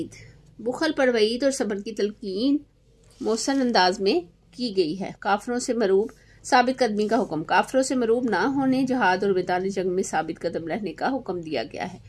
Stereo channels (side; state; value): both; identical; correlation 1.00